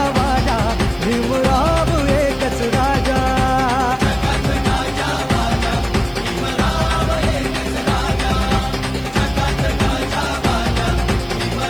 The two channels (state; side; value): noise; right; hiss, 27 dB below the sound